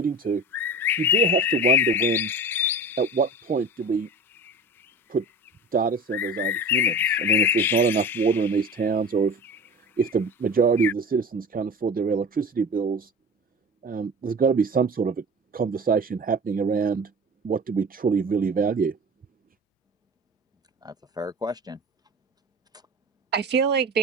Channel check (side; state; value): both; normal; correlation 0.35